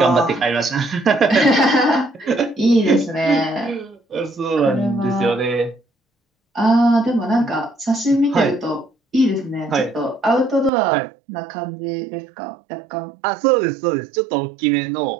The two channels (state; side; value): drops out; left; at 10.7 s